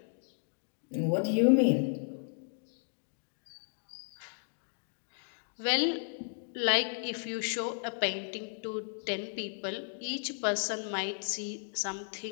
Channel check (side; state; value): right; silent; digital silence